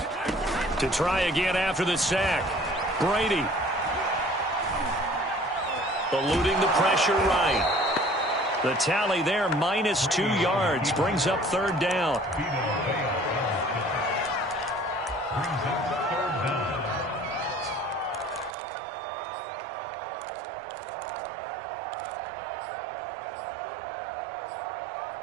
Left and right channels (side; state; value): left; drops out; at 18.5 s